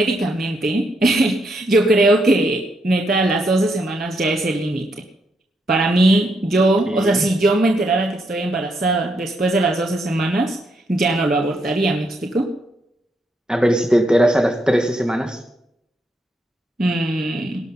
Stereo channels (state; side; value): normal; both; correlation 0.78